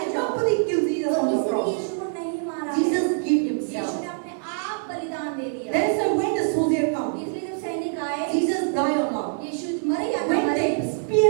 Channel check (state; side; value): silent; left; digital silence